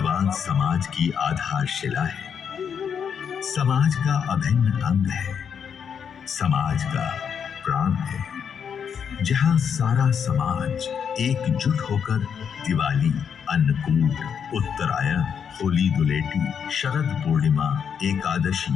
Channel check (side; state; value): right; quieter; 7.4 dB